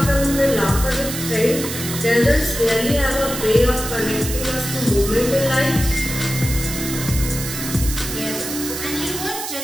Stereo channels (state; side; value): noise; right; hiss, 6 dB below the sound